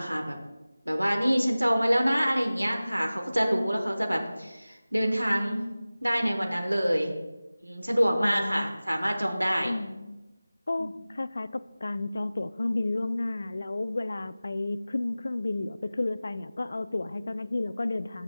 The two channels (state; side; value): inverted; both; correlation -0.98